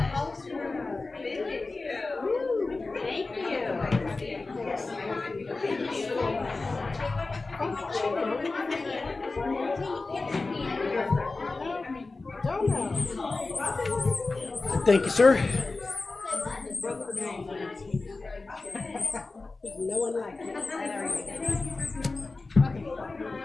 Thank you, sir. No one likes it.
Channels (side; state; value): right; quieter; 3.6 dB